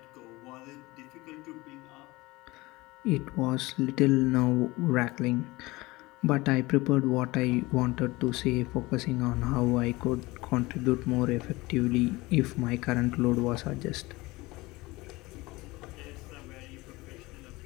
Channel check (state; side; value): quieter; right; 21.4 dB